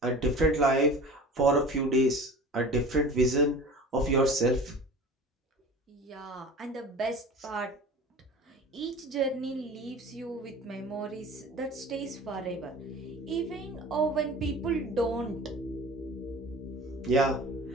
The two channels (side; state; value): both; normal; correlation 0.39